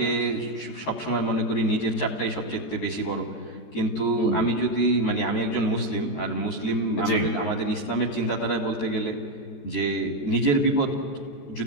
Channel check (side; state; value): right; late; 14 ms